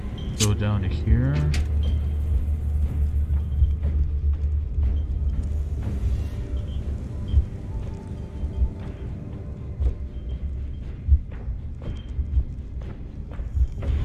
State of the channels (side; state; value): both; identical; correlation 1.00